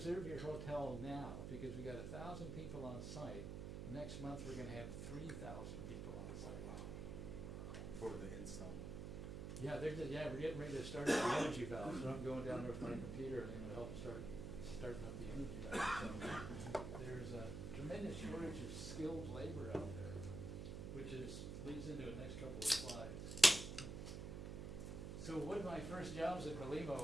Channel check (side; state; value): right; noise; hum, 5 dB below the sound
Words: your hotel now because we got 1,000 people on site. Next month we're going to have 3,000 people on site. For the install. Yeah, we're getting ready to start up the energy valve, so I'm going down there with my computer and I'm going to help them starting up the energy valve. So there's a tremendous shortage of skilled labor out there, which leads into the next couple of slides. So one of my first jobs at